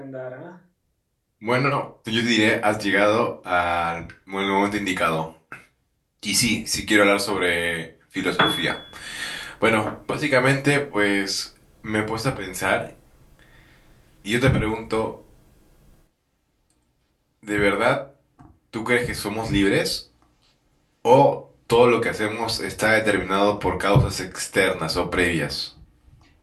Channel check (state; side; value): identical; both; correlation 1.00